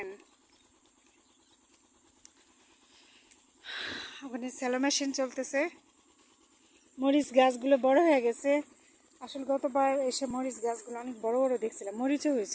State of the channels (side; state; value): both; identical; correlation 1.00